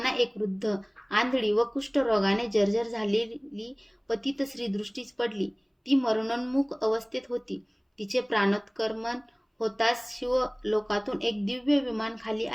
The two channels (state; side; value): identical; both; correlation 1.00